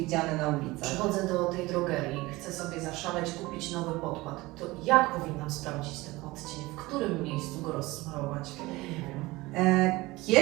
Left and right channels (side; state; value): left; quieter; 20.6 dB